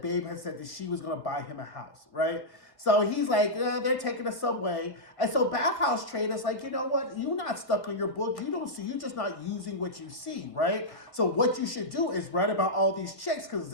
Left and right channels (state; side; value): late; right; 1.8 ms